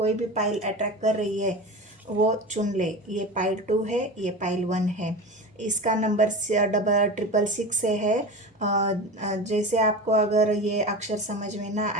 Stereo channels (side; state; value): both; normal; correlation 0.29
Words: भी पाइल अट्रैक्ट कर रही है वो चुन ले। ये पाइल 2 है, ये पाइल 1 है। इसका नंबर 666 से है। जैसे आपको अगर ये अक्षर समझ में ना